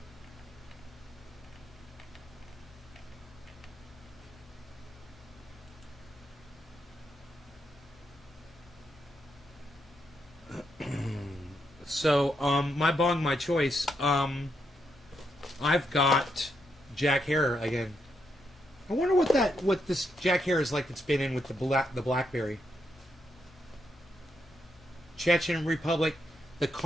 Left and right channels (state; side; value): normal; both; correlation 0.80